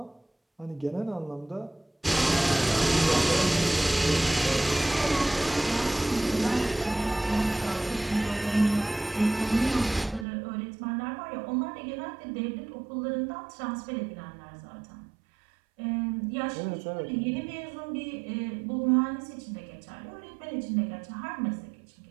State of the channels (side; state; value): left; drops out; at 10.2 s